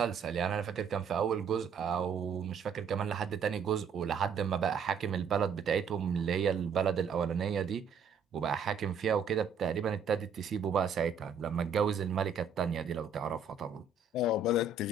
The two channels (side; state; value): left; quieter; 5.2 dB